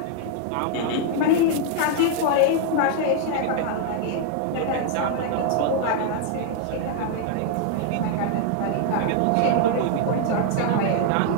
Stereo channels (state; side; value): different; both; correlation -0.01